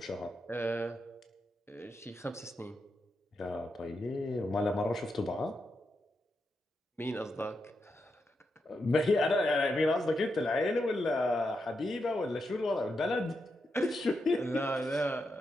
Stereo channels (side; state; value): both; normal; correlation 0.85